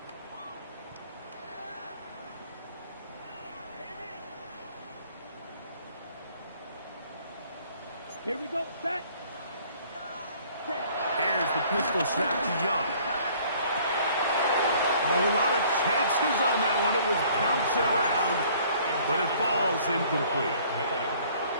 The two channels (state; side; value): inverted; both; correlation -0.57